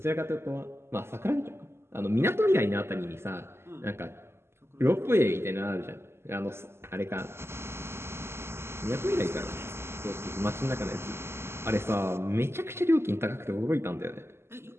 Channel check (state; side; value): late; left; 0.12 ms